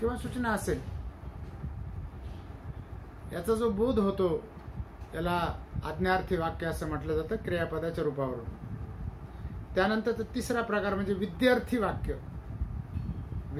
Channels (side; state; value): both; identical; correlation 1.00